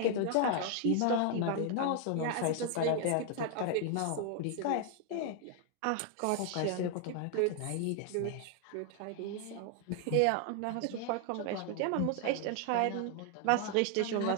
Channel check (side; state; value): both; different; correlation 0.00